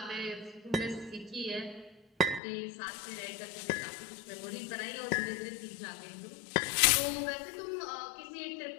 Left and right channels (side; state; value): right; drops out; at 2.4 s